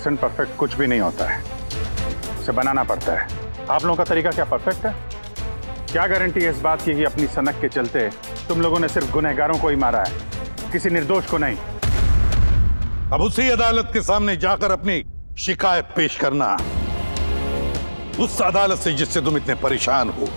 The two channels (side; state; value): both; inverted; correlation -1.00